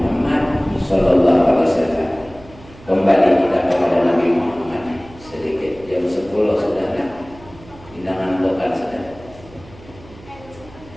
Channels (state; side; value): noise; right; hum, 21 dB below the sound